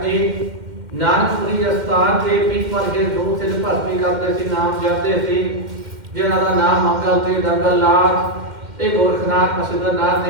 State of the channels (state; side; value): late; left; 2.1 ms